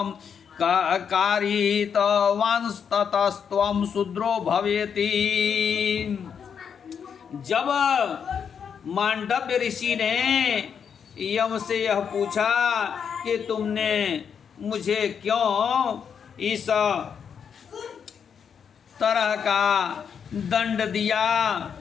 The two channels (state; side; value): quieter; right; 7.2 dB